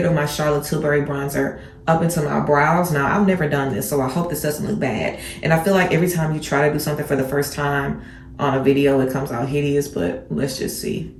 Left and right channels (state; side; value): identical; both; correlation 1.00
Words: of my Charlotte Tilbury bronzer up into my brows. Now, I've never done this, so I hope this doesn't look bad. And I feel like every time you try to do something for the first time on a video, it comes out hideous, but let's just see.